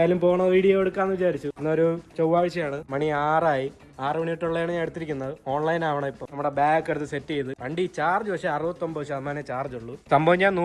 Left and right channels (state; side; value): identical; both; correlation 1.00